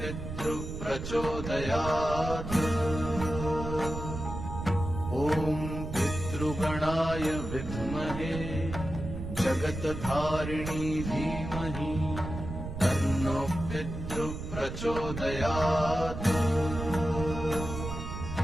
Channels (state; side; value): noise; right; rumble, 7 dB below the sound